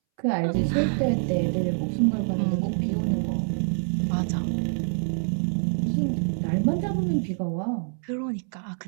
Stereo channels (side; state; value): left; silent; 61 dB below the other